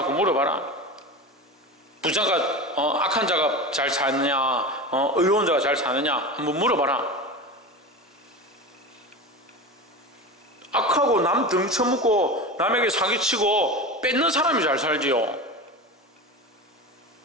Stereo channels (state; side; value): normal; both; correlation 0.27